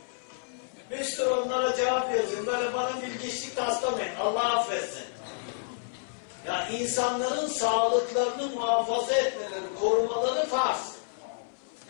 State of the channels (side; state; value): right; silent; 58 dB below the other